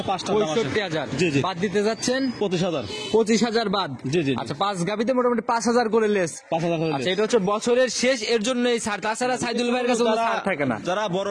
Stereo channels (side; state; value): both; identical; correlation 1.00